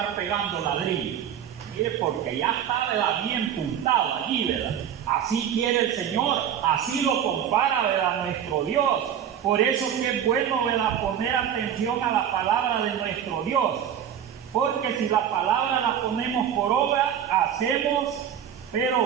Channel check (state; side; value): quieter; left; 9.3 dB